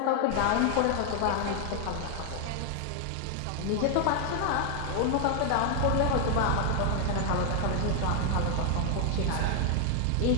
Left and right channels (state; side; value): different; both; correlation 0.00